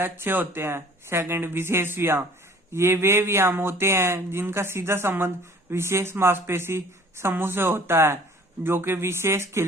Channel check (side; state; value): both; normal; correlation 0.51